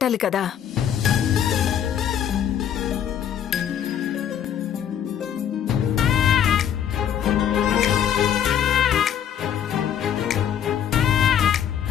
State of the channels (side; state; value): right; quieter; 9.4 dB